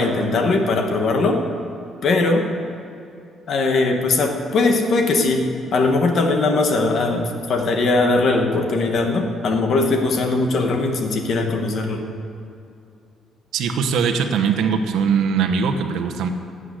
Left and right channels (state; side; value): normal; both; correlation 0.64